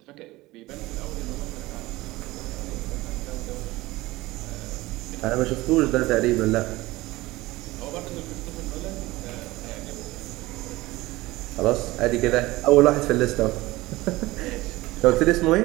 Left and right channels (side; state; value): left; quieter; 19.3 dB